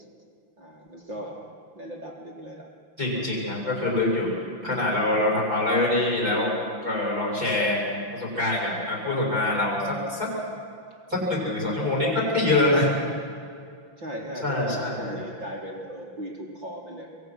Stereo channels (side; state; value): left; late; 5.9 ms